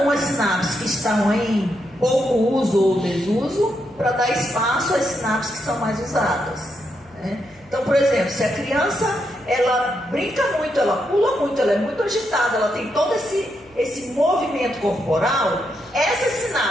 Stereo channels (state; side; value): noise; left; hum, 29 dB below the sound